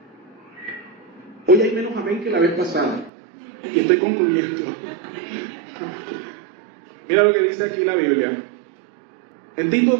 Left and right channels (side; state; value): left; drops out; at 3.1 s